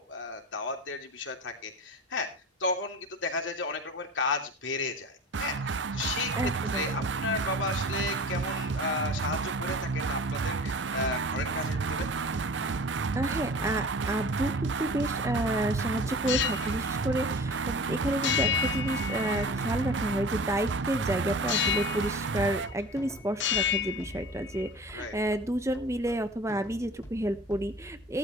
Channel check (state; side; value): normal; both; correlation 0.39